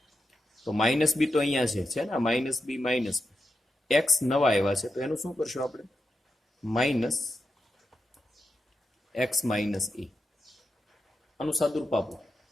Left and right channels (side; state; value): both; normal; correlation 0.88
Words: તો માઇનસ બી તો અહીંયા છે ને, માઇનસ બી માઇનસ એક્સ નવા આવ્યા છે તો એનું શું કરશું આપણે? માઇનસ એક્સ માઇનસ એ. આનું સાદુરૂપ આપો